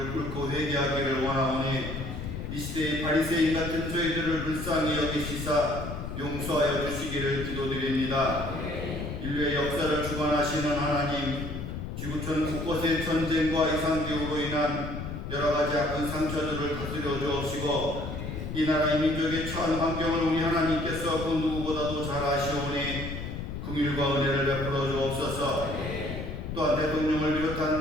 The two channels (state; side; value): noise; left; rumble, 6 dB below the sound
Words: 꿇고 회개하기를 원하오니 이 시대의 바리새인 같은 저희들을 불쌍히 여기시사 용서하여 주시기를 기도드립니다. 인류의 역사를 주관하시는 하나님, 지구촌 곳곳의 전쟁과 이상기후로 인한 여러가지 아픈 상처들을 다스려 주옵시고 이 나라의 민족의 처한 환경을 우리 하나님께서 그 누구보다도 잘 아시오니 긍휼과 은혜를 베풀어 주옵소서. 또한 대통령을